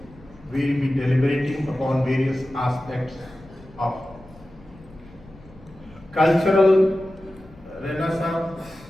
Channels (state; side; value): noise; left; rumble, 23 dB below the sound